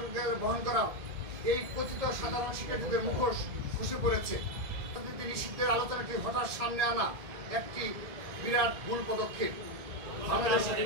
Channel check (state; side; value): late; left; 1.7 ms